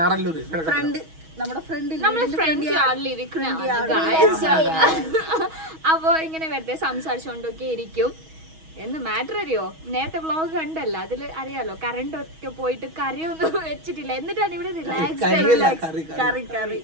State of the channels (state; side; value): late; left; 6.2 ms